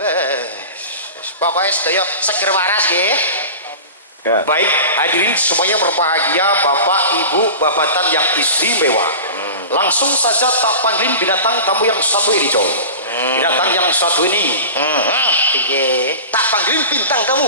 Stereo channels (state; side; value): inverted; both; correlation -0.33